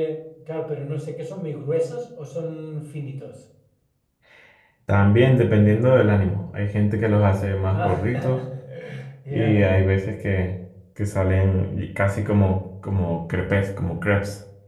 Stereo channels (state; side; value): identical; both; correlation 1.00